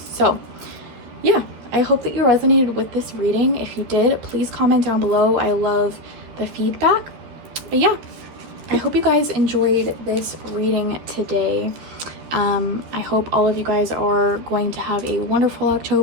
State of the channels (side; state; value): left; late; 13 ms